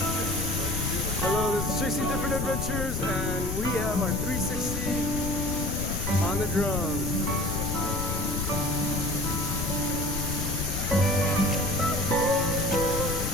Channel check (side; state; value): left; noise; rumble, 3 dB below the sound